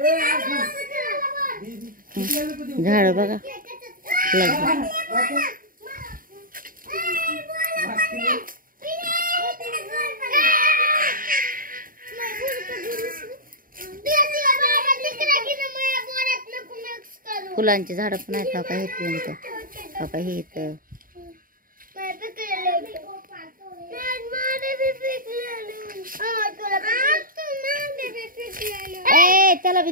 झाड बघा फुलांची झाड पण आहेत. हा का हे फ्रेंड, हा का हे इथं त्याला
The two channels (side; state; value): left; late; 0.41 ms